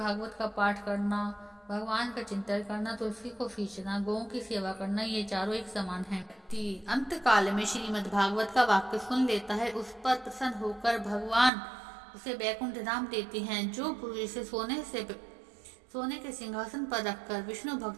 का पाठ करना, भगवान का चिंतन करना, तुलसी को सींचना, गौं की सेवा करना, ये चारों एक समान है। अंत काल में श्रीमद् भागवत का वाक्य सुन लेता है, उस पर प्रसन्न होकर भगवान उसे वैकुंठ धाम देते हैं। जो पुरुष इसे सोने के सिंहासन पर रखकर विष्णु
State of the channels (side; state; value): left; drops out; at 11.5 s